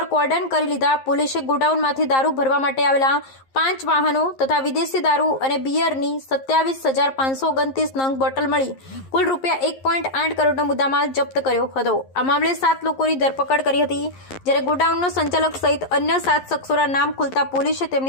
કોર્ડન કરી લીધા. પોલીસે ગોડાઉનમાંથી દારૂ ભરવા માટે આવેલા 5 વાહનો તથા વિદેશી દારૂ અને બિયરની 27,529 નંગ બોટલ મળી કુલ ₹1.8 કરોડનો મુદ્દામાલ જપ્ત કર્યો હતો. આ મામલે 7 લોકોની ધરપકડ કરી હતી, જ્યારે ગોડાઉનનો સંચાલક સહિત અન્ય 7 શખ્સોના નામ ખુલતા પોલીસે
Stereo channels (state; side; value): late; right; 11 ms